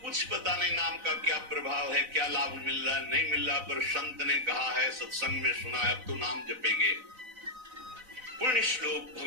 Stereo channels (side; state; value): left; late; 4.0 ms